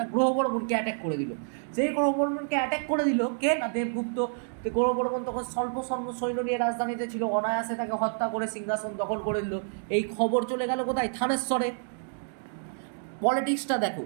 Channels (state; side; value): silent; left; digital silence